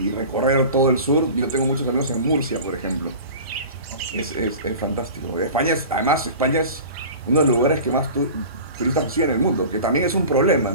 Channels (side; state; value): both; inverted; correlation -0.37